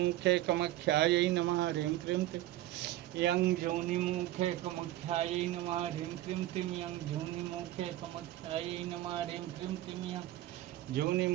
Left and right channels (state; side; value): quieter; left; 14.9 dB